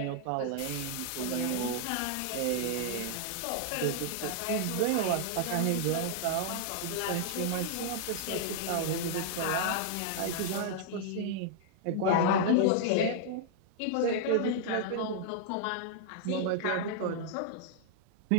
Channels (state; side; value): different; both; correlation -0.01